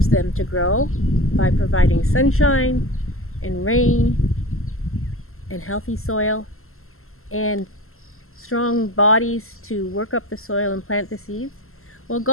them to grow by providing sunshine and rain and healthy soil and strong bodies to work up the soil and plant the seeds. Well,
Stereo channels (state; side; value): late; right; 0.62 ms